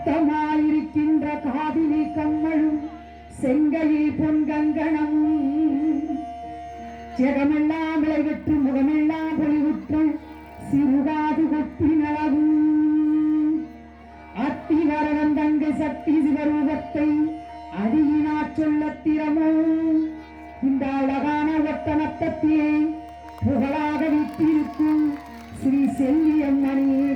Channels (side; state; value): both; identical; correlation 1.00